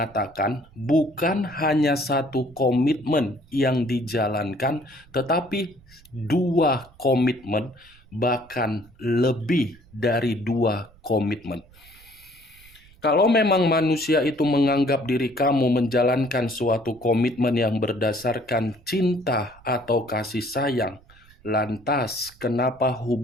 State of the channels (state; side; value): noise; right; rumble, 26 dB below the sound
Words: bukan hanya satu komitmen yang dijalankan, tetapi dua komitmen, bahkan lebih dari dua komitmen. Kalau memang manusia itu menganggap diri kamu menjalankan suatu komitmen yang berdasarkan cinta atau kasih sayang, lantas kenapa